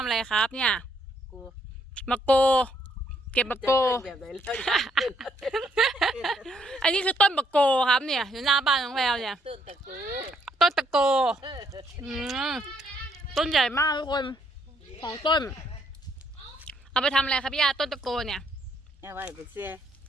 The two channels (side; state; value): both; normal; correlation 0.71